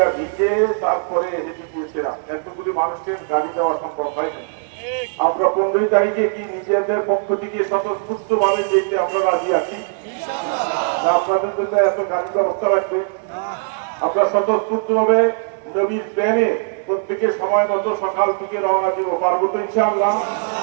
ভিজে তারপরে হেঁটে গিয়েছিলাম, এতগুলি মানুষকে গাড়ি দেওয়া সম্ভব হয়নি। আমরা 15 তারিখে কি নিজেদের পক্ষ থেকে স্বতঃস্ফূর্ত ভাবে যেতে আমরা রাজি আছি? আপনাদের জন্য এত গাড়ি ব্যবস্থা রাখবে, আমরা স্বতঃস্ফূর্ত ভাবে নবীর প্রেমে প্রত্যেকে সময় মতো সকাল থেকে রওনা দিব, পারবো তো ইনশাআল্লাহ?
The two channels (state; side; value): silent; left; digital silence